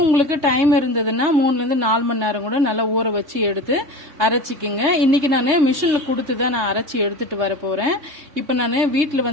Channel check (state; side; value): late; left; 3.3 ms